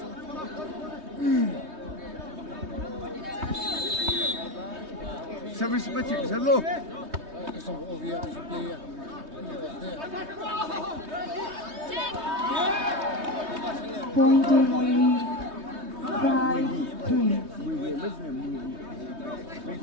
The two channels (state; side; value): late; left; 3.2 ms